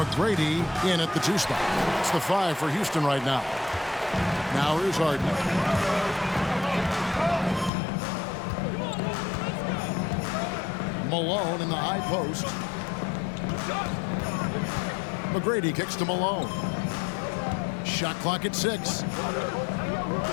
in at the 2 spot. It's the 5 for Houston right now. Now here's Harden. Malone in the high post. McGrady kicks to Malone. Shot clock at 6.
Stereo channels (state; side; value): drops out; right; at 7.7 s